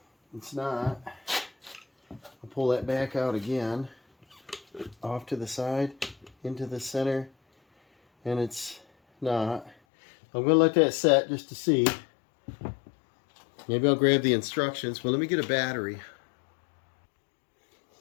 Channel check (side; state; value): right; drops out; at 9.8 s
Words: It's not. I'll pull that back out again. Off to the side, into the center. And it's not. I'm going to let that set just to see. Maybe I'll grab the instructions. Well, let me get a battery.